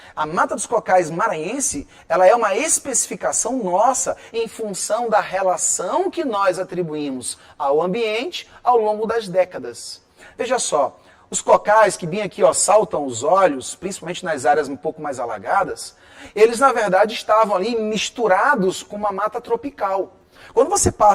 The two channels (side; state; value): both; identical; correlation 1.00